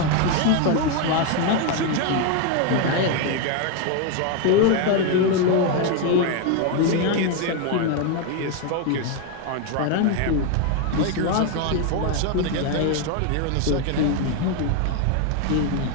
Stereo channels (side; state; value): both; different; correlation 0.01